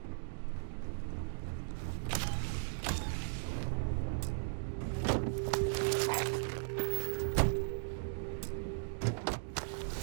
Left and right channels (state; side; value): silent; left; digital silence